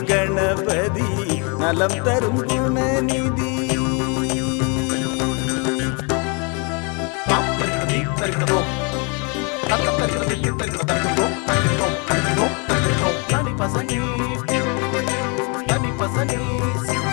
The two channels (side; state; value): right; quieter; 34.1 dB